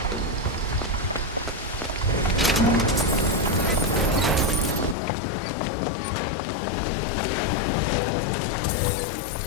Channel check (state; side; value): drops out; right; at 5.0 s